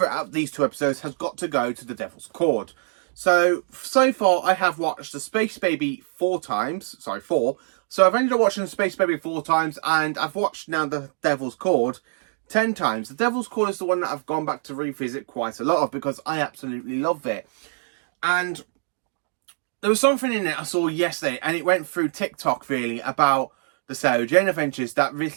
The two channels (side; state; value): left; silent; digital silence